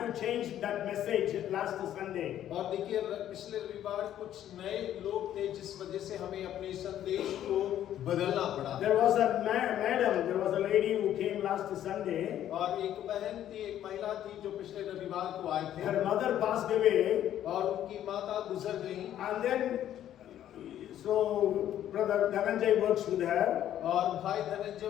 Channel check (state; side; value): quieter; right; 11.4 dB